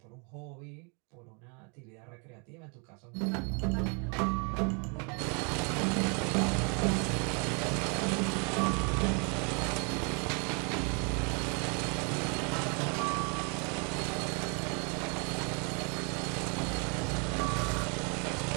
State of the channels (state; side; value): quieter; left; 34.9 dB